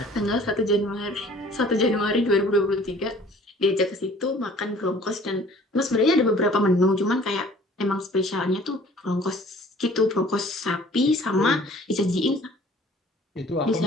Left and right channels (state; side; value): normal; both; correlation 0.51